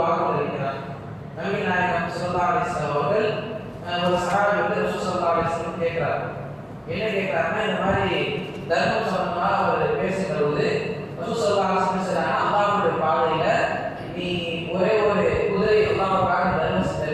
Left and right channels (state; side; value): identical; both; correlation 1.00